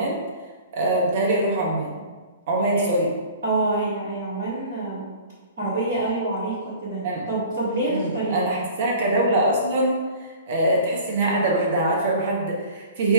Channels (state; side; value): inverted; both; correlation -0.44